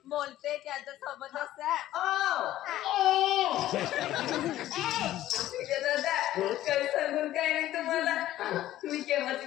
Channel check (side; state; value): right; quieter; 13.9 dB